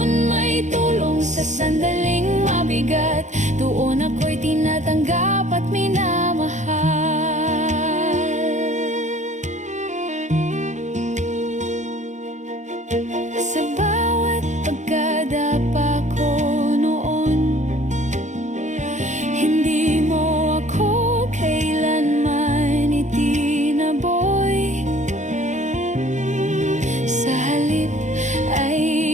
may tulong sa sandaling mabigat, doon ako'y tinatanggap at minamahal. Sa bawat pagkadapa ko noon, hindi mo ako kailanman itinaboy. Sa halip ay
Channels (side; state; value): left; late; 0.35 ms